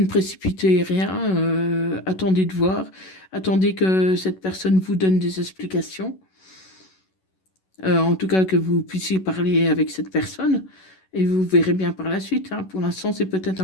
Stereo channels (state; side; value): late; right; 11 ms